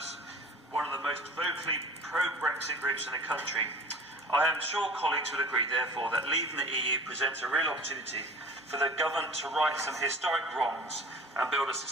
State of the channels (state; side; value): normal; both; correlation 0.42